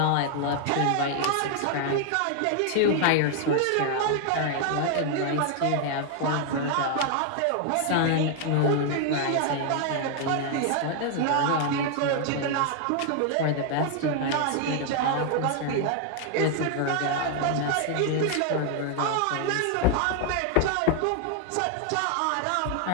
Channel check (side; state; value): both; different; correlation 0.00